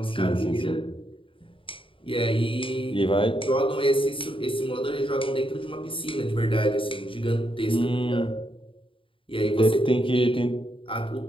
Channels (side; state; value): right; late; 0.25 ms